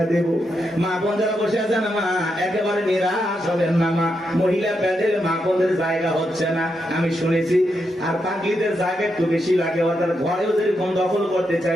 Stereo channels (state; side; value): normal; both; correlation 0.83